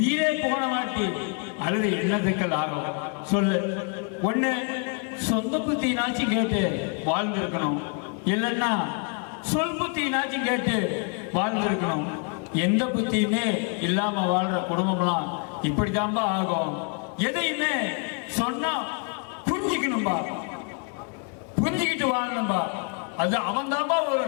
போன மாட்டி அல்லது என்னத்துக்கள் ஆகும் சொல்லு. ஒண்ணு சொந்த புத்தினாச்சும் கேட்டு வாழ்ந்திருக்கணும், இல்லைன்னா சொல் புத்தினாச்சும் கேட்டு வாழ்ந்திருக்கணும். எந்த புத்தியுமே இல்லாம வாழ்ற குடும்பம்லாம் இப்படித்தான்பா ஆகும். எதையுமே சொன்னா புரிஞ்சுக்கணும்பா. புரிஞ்சுக்கிட்டு வாழணும்பா. அது அவன் தான்பா ஒரு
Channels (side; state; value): right; quieter; 38.8 dB